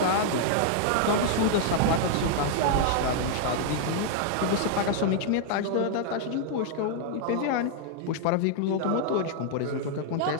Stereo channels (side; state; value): both; different; correlation -0.01